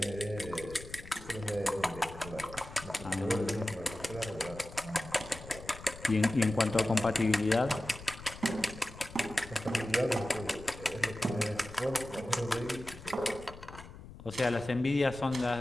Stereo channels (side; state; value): left; noise; rumble, 15 dB below the sound